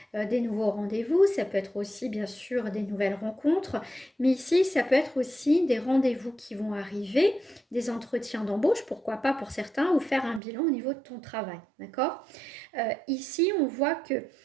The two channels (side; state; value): left; drops out; at 10.4 s